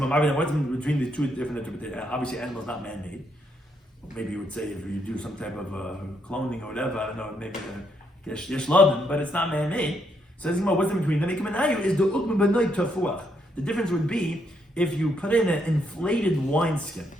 between the two different interpretations? Obviously, animal is not man-made. Maybe you would say if you do some type of cloning or whatever, I don't know, maybe yeshladim, but it's not man-made. So what's in between them? Is the the difference would be if you put in an inflated wineskin,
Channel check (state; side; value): normal; both; correlation 0.75